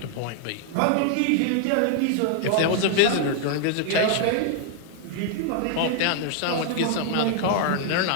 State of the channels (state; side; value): different; both; correlation 0.00